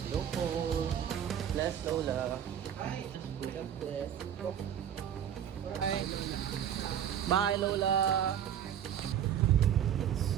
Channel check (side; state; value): left; quieter; 9.4 dB